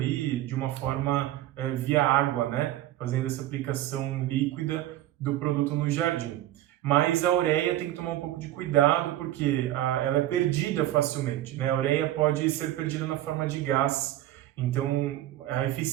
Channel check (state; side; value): quieter; left; 14.0 dB